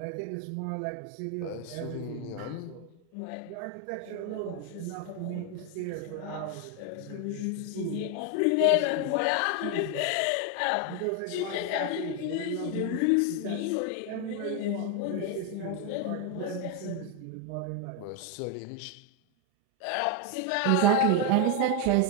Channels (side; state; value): both; different; correlation 0.01